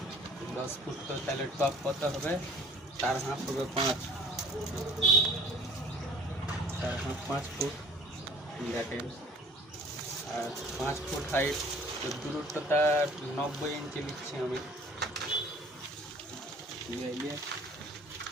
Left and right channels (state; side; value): normal; both; correlation 0.51